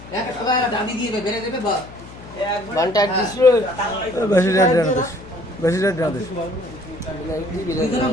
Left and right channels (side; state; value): left; noise; hum, 17 dB below the sound